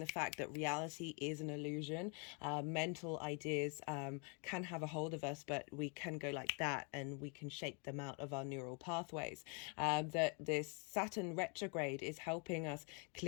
fact that reality is an illusion. Mental ideas can have a hold of us, but we can go like that and we can shape them out of our neural pathways. That this Saturn retrograde is helping us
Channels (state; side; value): quieter; right; 36.6 dB